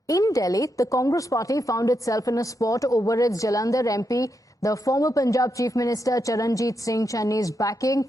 in Delhi, the Congress party found itself in a spot over its Jalandhar MP, the former Punjab Chief Minister Charanjit Singh Channi's backing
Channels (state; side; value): normal; both; correlation 0.83